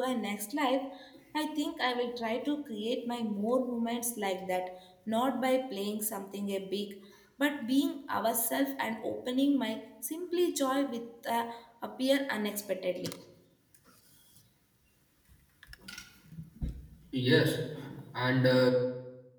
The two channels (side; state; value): both; identical; correlation 1.00